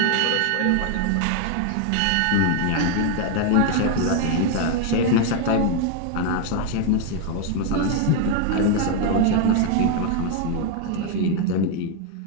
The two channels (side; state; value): both; different; correlation 0.00